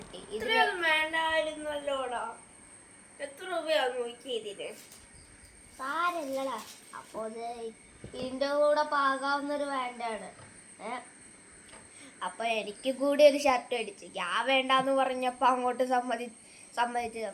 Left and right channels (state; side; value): identical; both; correlation 1.00